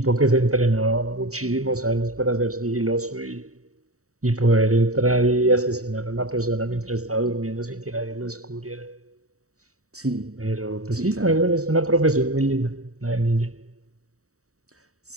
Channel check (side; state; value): left; late; 0.65 ms